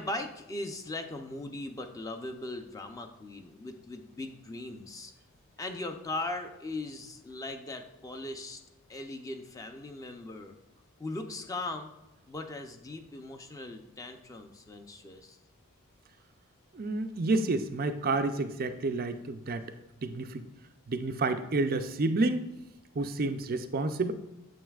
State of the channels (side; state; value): both; normal; correlation 0.44